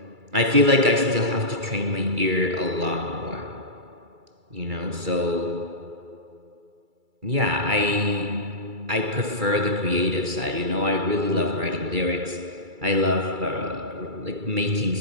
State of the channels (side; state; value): left; late; 2.3 ms